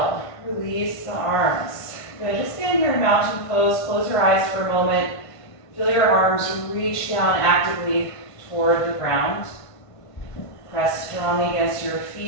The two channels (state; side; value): late; right; 1.5 ms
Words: release the arms. Good. Just stand here in mountain pose. Close your eyes for a moment. Feel your arms reach down actively toward the ground. Press strongly against your